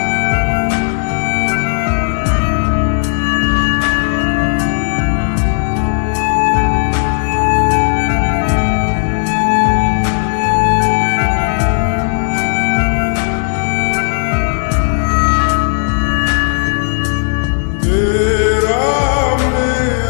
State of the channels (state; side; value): silent; right; digital silence